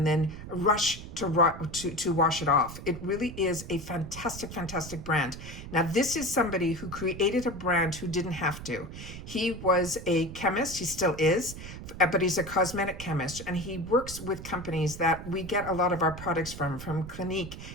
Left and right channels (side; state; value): right; noise; rumble, 11 dB below the sound